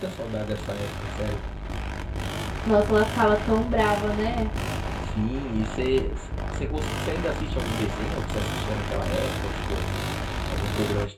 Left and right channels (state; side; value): identical; both; correlation 1.00